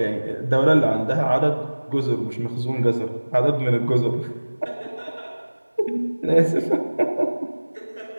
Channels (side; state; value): both; inverted; correlation -1.00